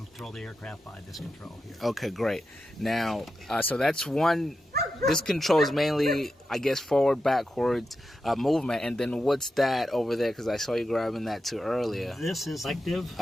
control the aircraft by this control here. Okay, great. Now, so that's one. This controls mainly, I guess, forward, backwards movement. And then what's that over there? Because I saw you grabbing that too earlier. This is selective.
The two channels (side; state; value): both; normal; correlation 0.89